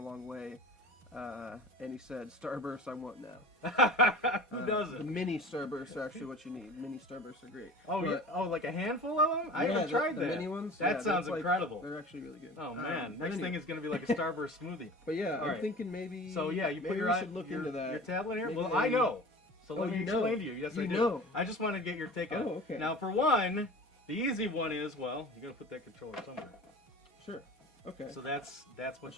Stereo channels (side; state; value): both; normal; correlation 0.39